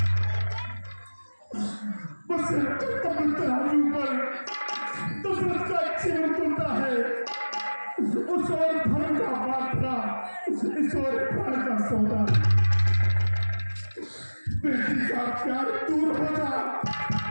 बस कमल तराजू पर दशरथ का जीवन तुलता है। उस और धर्म का बाटला इस और प्राण का सौदा। बेटी का प्यार दूर हो जा,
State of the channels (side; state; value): both; inverted; correlation -1.00